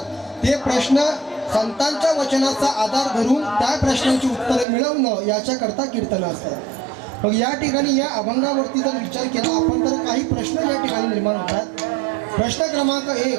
ते प्रश्न संतांच्या वचनाचा आधार धरून त्या प्रश्नांची उत्तरं मिळवणं याच्याकरता कीर्तन असतात मग या ठिकाणी या अभंगावरती जर विचार केला आपण तर काही प्रश्न या ठिकाणी निर्माण होतात प्रश्न क्रमांक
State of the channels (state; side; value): drops out; left; at 4.7 s